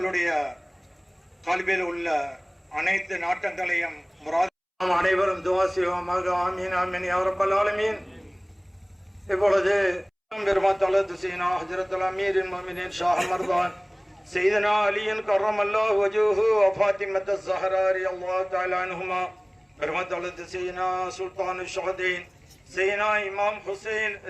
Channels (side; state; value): both; identical; correlation 1.00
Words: கல்வியில் உள்ள அனைத்து நாட்டங்களையும் அனைவரும் துஆ செய்வோமாக. ஆமீன் ஆமீன் யா ரப்பல் ஆலமீன். இப்பொழுது பெருமாத்தலது சீனா ஹஜ்ரத்துல் அமீரின் முஃமினீன் ஷாஹ் மர்தான் سيدنا علي كرم الله وجهه وفاطمة الزهراء رضي الله تعالى عنهما برمت سيدنا سلطان الشهدين سيدنا إمام حسين